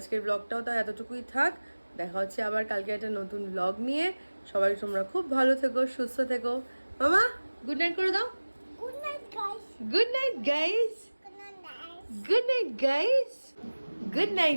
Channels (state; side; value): inverted; both; correlation -1.00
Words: ব্লগটাও তাও এতটুকুই থাক। দেখা হচ্ছে আবার কালকে একটা নতুন ব্লগ নিয়ে। সবাই তোমরা খুব ভালো থেকো, সুস্থ থেকো। মামা গুড নাইট করে দাও। Good night, guys. Good night guys, Good night, guys. Good night guys, good